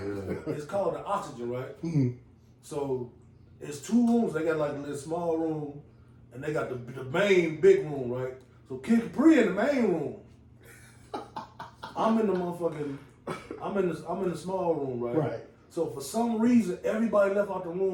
It's called the Oxygen, right? So it's two rooms. They got like a little small room, and they got the main big room, right? So Kid Capri in the main room. I'm in the small room, right? Right. So for some reason, everybody left out the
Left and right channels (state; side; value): identical; both; correlation 1.00